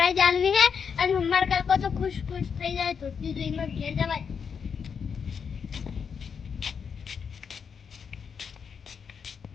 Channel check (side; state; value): right; quieter; 6.5 dB